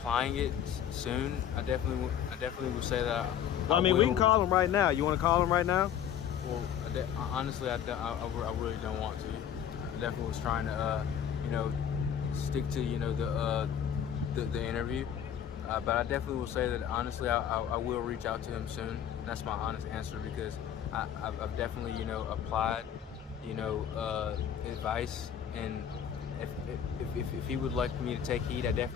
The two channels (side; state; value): right; quieter; 9.3 dB